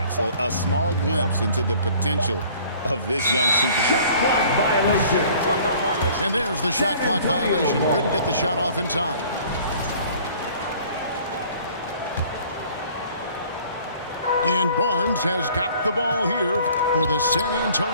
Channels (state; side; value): inverted; both; correlation -0.52